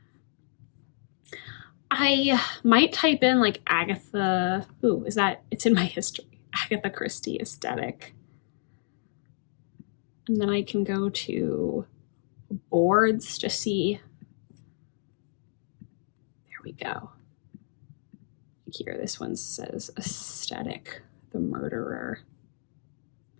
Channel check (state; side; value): silent; right; digital silence